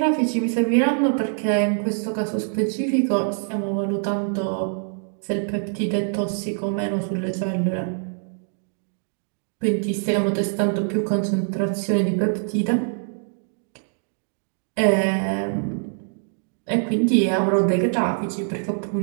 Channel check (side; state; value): left; silent; 63 dB below the other